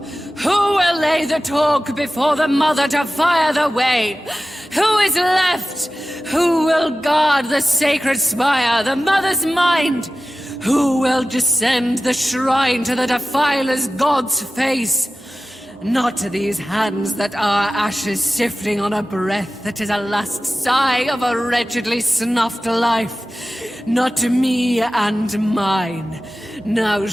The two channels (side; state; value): both; normal; correlation 0.95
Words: will lay the talk before the Mother to fire the way? Who is left? Who will guard the sacred spire, the Mother's mind? Who will descend the shrine to the Defiler's God's face? Not to these hands that are ashes sifting on a breath that is a last sigh of a wretchedly snuffed life. Not to me and mine. Now